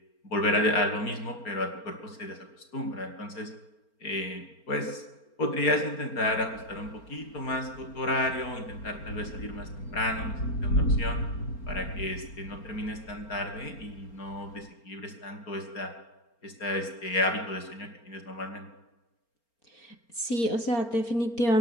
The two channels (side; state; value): right; late; 4.4 ms